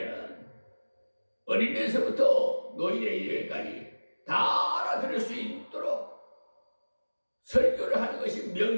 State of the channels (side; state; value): both; inverted; correlation -1.00